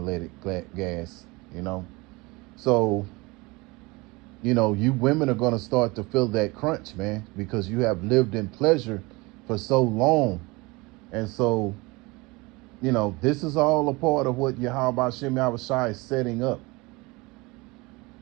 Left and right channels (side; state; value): left; quieter; 24.2 dB